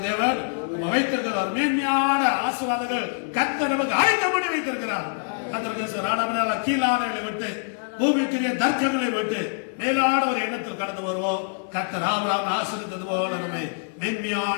தேவன் வைத்திருக்கிறார். மேன்மையான ஆசீர்வாதங்கள் கர்த்தர் நமக்கு ஆயத்தம் பண்ணி வைத்திருக்கிறார். கர்த்தருக்கு கீழானவர்களை விட்டு, பூமிக்குரிய தர்க்கங்களை விட்டு மேலான ஒரு எண்ணத்தில் கடந்து வருவோம். கர்த்தர் ஆபிரகாமை ஆசீர்வதித்தது போல நம்மை மேன்மையான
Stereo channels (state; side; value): silent; right; 59 dB below the other